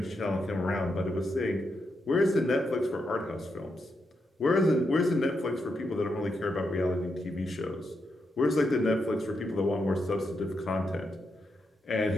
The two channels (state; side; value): normal; both; correlation 0.83